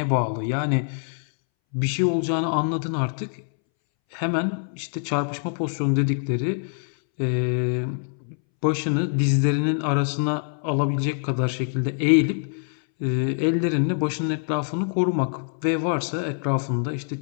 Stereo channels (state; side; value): silent; right; 62 dB below the other